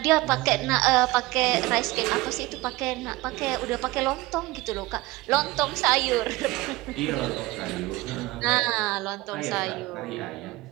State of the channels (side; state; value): left; quieter; 20.1 dB